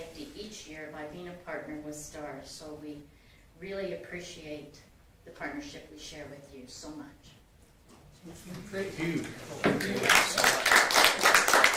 each year by being a partner with STARS. So we really appreciate the partnership we share with you so much. Great. Huge.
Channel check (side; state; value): both; identical; correlation 1.00